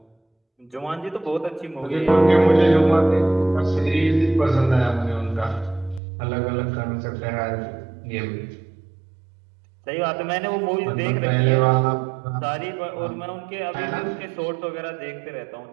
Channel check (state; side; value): drops out; left; at 6.0 s